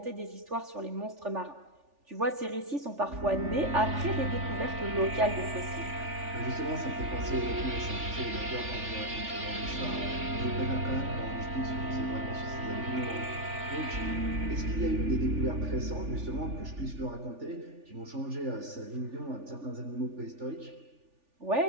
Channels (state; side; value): late; left; 3.4 ms